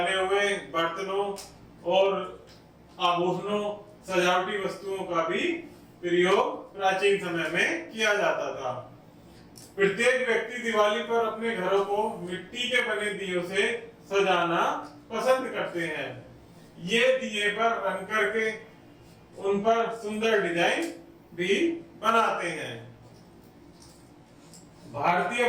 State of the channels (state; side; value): identical; both; correlation 1.00